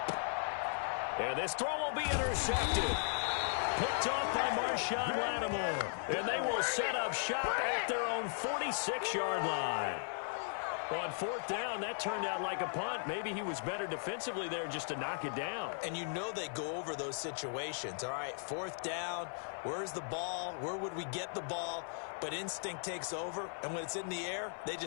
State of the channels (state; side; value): silent; right; 53 dB below the other